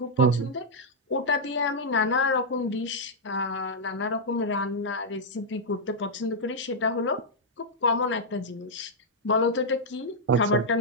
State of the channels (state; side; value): normal; both; correlation -0.05